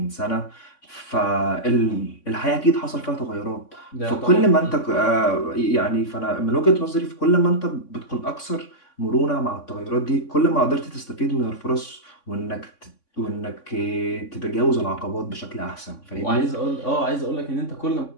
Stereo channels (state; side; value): late; right; 3.6 ms